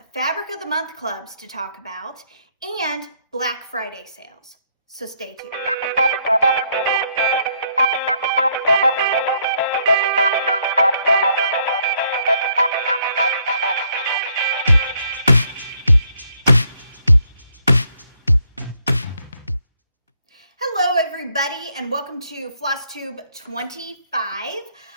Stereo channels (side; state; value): both; inverted; correlation -0.70